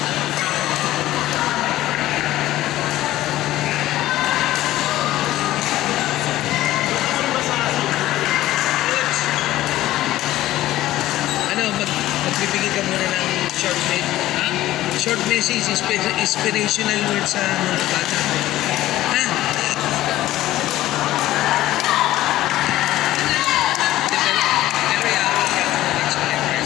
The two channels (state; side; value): quieter; right; 15.1 dB